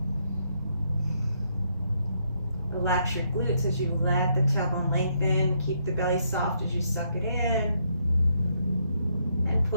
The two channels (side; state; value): both; inverted; correlation -0.74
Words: Relax your glutes as you let the tailbone lengthen. Keep the belly soft as you suck it in. And